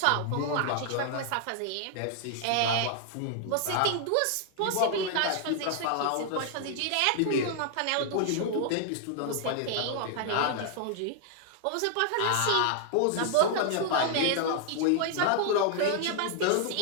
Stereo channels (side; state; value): both; different; correlation 0.00